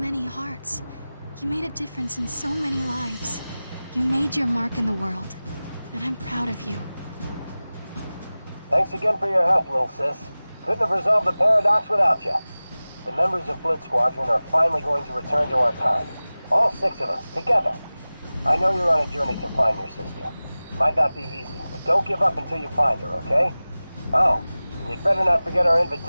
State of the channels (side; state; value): both; inverted; correlation -0.98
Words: hearts. You made a difference in so many lives. You made your mark in the world, and I'm proud of you. Thanks again for your help, little sis. Couldn't have resolved the paradox without you. The members of Blitz Squadron are finally going to return to our time. All 6 of us, together. I know you're on a journey to find your sister. Might not be easy, but don't give up until you find her, okay? Oh, and you'd better not forget our